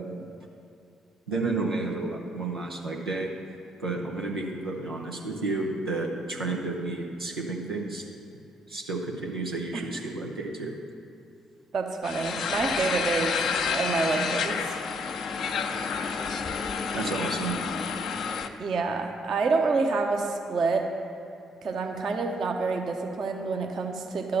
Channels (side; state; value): both; normal; correlation 0.66